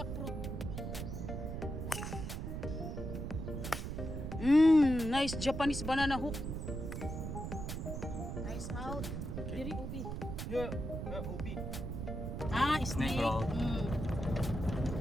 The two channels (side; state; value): right; noise; rumble, 4 dB below the sound